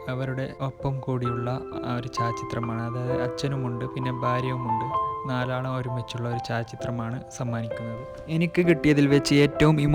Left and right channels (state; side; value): identical; both; correlation 1.00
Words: അവരുടെ ഒപ്പം കൂടിയുള്ള ഒരു ഛായാചിത്രമാണ്. അതായത് അച്ഛനുമുണ്ട്, പിന്നെ ഭാര്യയുമുണ്ട്. നാലാളും ഒരുമിച്ചുള്ള ഒരു ഛായാചിത്രമാണ് സമ്മാനിക്കുന്നത്. എനിക്ക് കിട്ടിയതിൽ വെച്ച് ഏറ്റവും